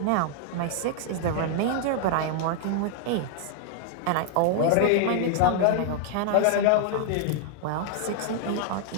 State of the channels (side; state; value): both; different; correlation 0.00